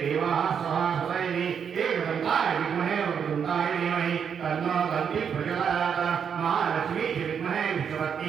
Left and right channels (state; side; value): quieter; left; 7.3 dB